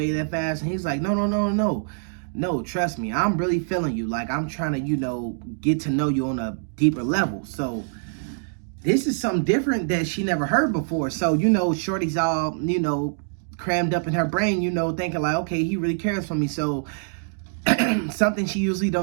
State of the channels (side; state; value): left; silent; digital silence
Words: that fast. And he's like, no, trust me, I'm really feeling you. Like, I'm trying to, you know, get to know you on a deeper level. So this is something different that she never heard before. So, you know, Shorty's all, you know, crammed up in her brain, you know, thinking like, okay, he really cares for me. So something she usually